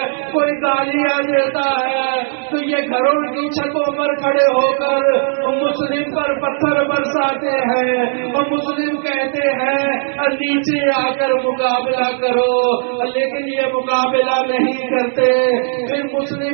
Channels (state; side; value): silent; left; digital silence